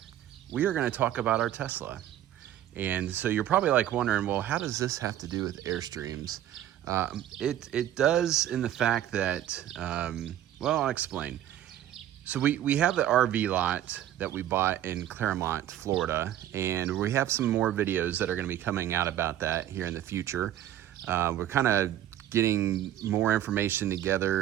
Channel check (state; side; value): quieter; left; 12.0 dB